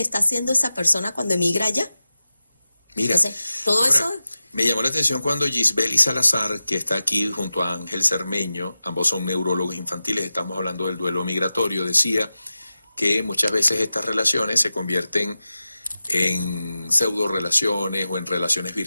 haciendo esa persona cuando emigra allá. Mira, entonces, todo ahora, eso... Me llamó la atención cuando Gisbeli Salazar, que está aquí junto a Ángel Cermeño, ambos son neurólogos infantiles, estamos hablando del duelo migratorio, decía que muchas veces estas relaciones se convierten en pseudo relaciones o en relaciones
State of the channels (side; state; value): both; inverted; correlation -0.94